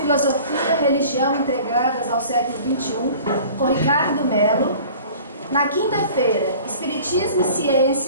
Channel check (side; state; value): both; inverted; correlation -0.45